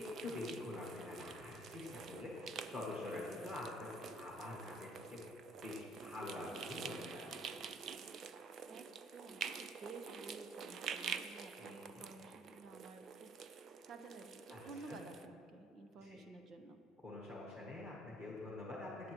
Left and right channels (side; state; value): both; normal; correlation 0.62